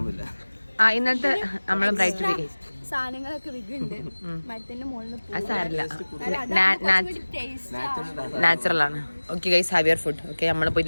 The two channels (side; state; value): both; inverted; correlation -1.00